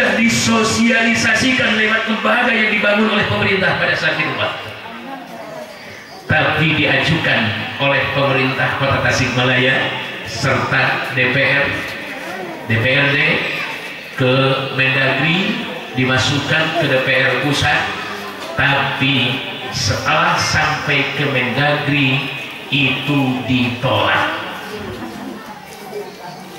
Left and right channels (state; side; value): identical; both; correlation 1.00